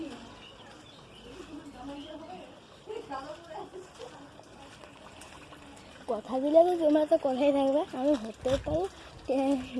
কথা দিলে তো তোমরা তো কথাই থাকবে, আমি হতে পারি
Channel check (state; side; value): identical; both; correlation 1.00